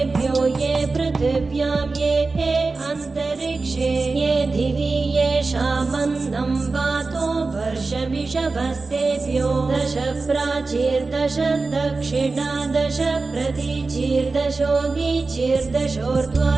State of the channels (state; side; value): quieter; left; 3.8 dB